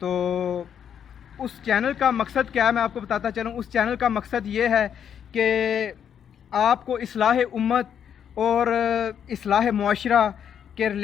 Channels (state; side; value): quieter; right; 8.5 dB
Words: اس چینل کا مقصد کیا ہے میں آپ کو بتاتا چلوں. اس چینل کا مقصد یہ ہے کہ آپ کو اصلاح امت اور اصلاح معاشرہ کے